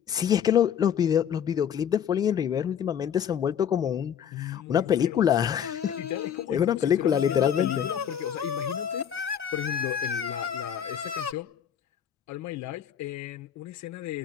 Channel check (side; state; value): right; quieter; 8.7 dB